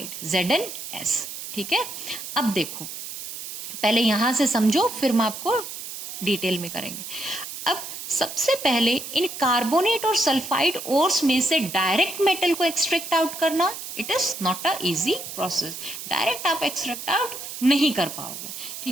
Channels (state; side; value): noise; right; hiss, 9 dB below the sound